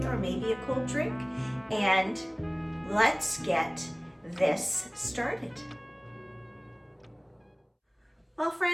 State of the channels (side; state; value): both; identical; correlation 1.00